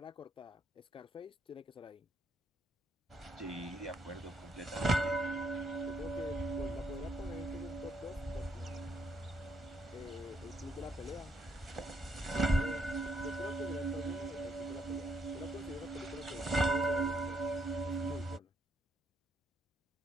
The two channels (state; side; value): normal; both; correlation 0.74